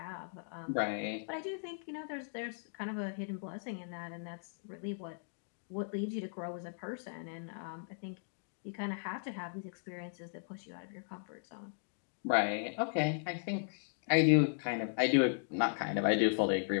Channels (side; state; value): right; silent; digital silence